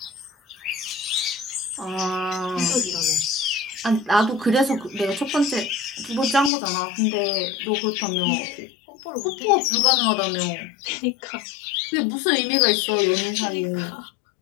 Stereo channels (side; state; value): right; drops out; at 6.5 s